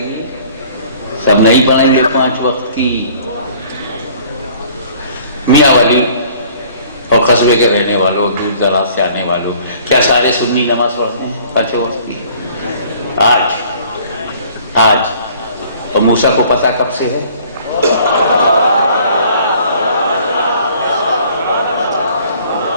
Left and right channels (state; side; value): inverted; both; correlation -0.54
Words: سب نہیں پڑھیں گے 5 وقت کی. میاں والی اور قصبے کے رہنے والوں, دور دراز سے آنے والوں, کیا سارے سنی نماز پڑھتے ہیں 5 وقت کی؟ آج. اور موسیٰ کو پتہ کب سے ہے؟